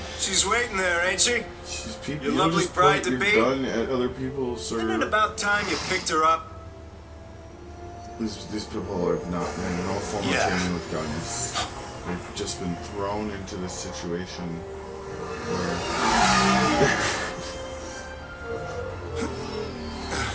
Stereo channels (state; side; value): identical; both; correlation 1.00